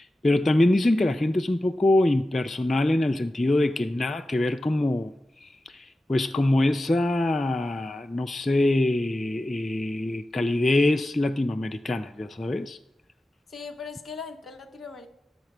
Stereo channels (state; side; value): normal; both; correlation 0.93